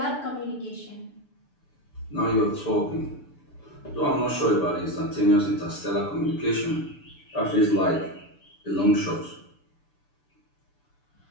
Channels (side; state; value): right; late; 6.9 ms